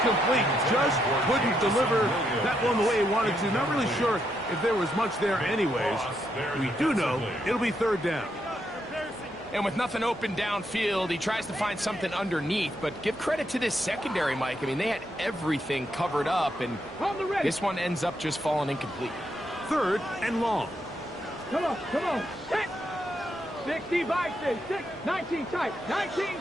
Just couldn't deliver that one the way he wanted to. Not really sure if there was much there anyways. We do know it'll be third down. And with nothing open downfield, he tries to find something underneath. But give credit to this secondary, Mike. I mean, they had everything covered up, and this one ends up just falling incomplete. Third and long. Come on, come on. 60 by 6, 19 tight, 19.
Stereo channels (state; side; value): normal; both; correlation 0.79